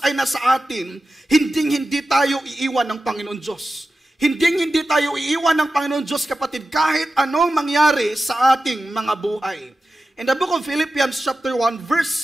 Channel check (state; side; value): normal; both; correlation 0.93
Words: ay nasa atin, hindi tayo iiwan ng Panginoon Diyos. Hindi tayo iiwan ng Panginoon Diyos, kapatid, kahit anong mangyari sa ating mga buhay. In the book of Philippians chapter 1 verse